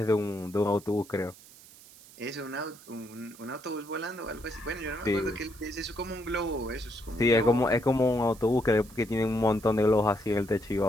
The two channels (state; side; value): noise; right; hiss, 21 dB below the sound